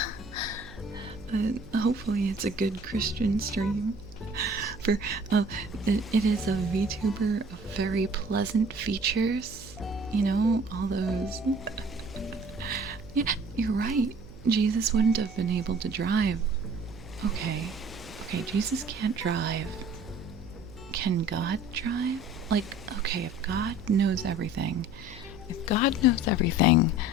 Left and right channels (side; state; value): right; noise; hum, 19 dB below the sound